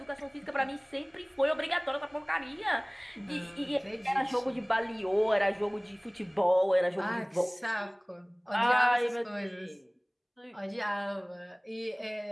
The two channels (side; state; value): both; identical; correlation 1.00